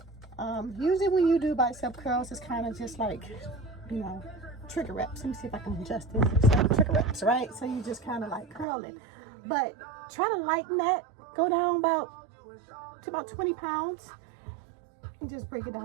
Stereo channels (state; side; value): drops out; left; at 8.7 s